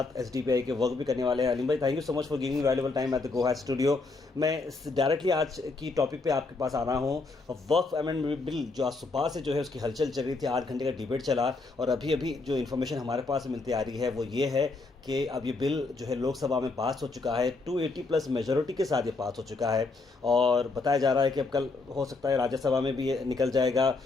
एसडीपीआई के वर्क भी करने वाले हैं। अलीम भाई, thank you so much for giving me valuable time at the गोहास स्टूडियो। मैं डायरेक्टली आज की टॉपिक पे आपके पास आ रहा हूँ। वर्क अमेंडमेंट बिल जो आज सुबह से जो है उसकी हलचल चल रही थी, 8 घंटे का डिबेट चला और अभी अभी जो इन्फॉर्मेशन हमारे पास मिलती आ रही है वो ये है कि अब ये बिल जो है लोकसभा में पास हो चुका है, 280 प्लस मेजॉरिटी के साथ ये पास हो चुका है और बताया जा रहा है कि अब कल हो सकता है राज्यसभा में भी ये निकल जाएगा।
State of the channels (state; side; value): quieter; right; 3.7 dB